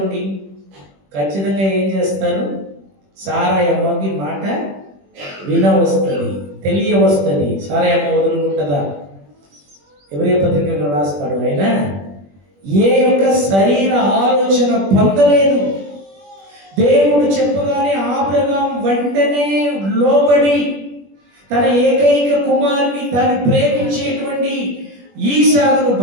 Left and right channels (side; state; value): left; late; 21 ms